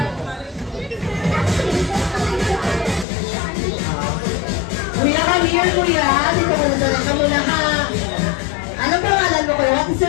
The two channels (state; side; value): drops out; right; at 3.1 s